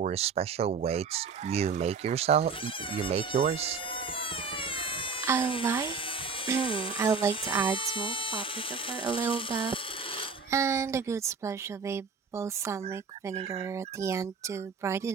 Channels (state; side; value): quieter; left; 5.2 dB